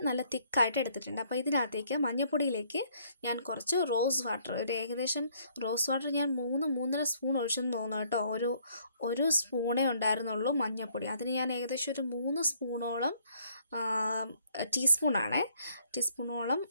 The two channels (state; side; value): inverted; both; correlation -0.65